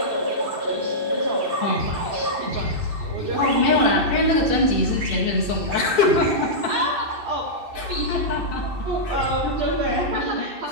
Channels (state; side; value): late; left; 2.6 ms